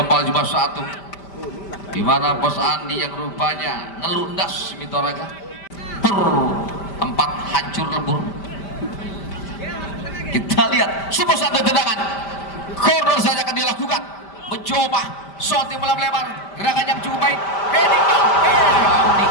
cuma satu, di mana Bos Andi yang rupanya ngelundas Mitoraga empat hancur lebur. Kita lihat sebuah satu tendangan corner saja akan dilakukan. Mencoba shot yang lebar, gerakan yang cukup baik. Amdi.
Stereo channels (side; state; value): right; late; 5.1 ms